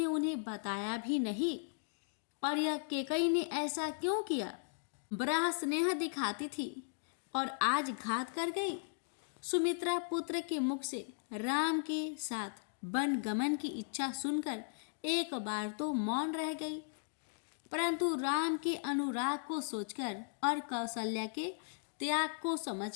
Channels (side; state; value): right; silent; digital silence